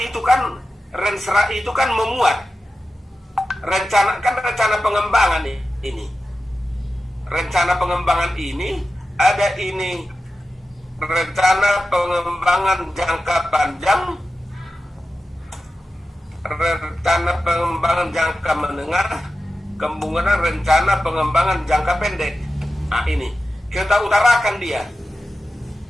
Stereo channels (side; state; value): both; normal; correlation 0.93